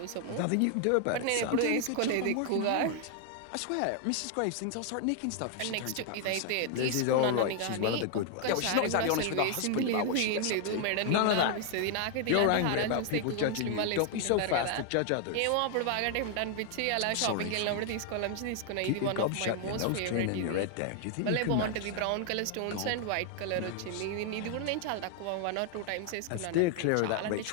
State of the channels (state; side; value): different; both; correlation 0.00